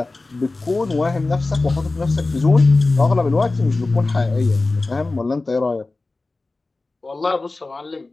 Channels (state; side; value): quieter; right; 3.3 dB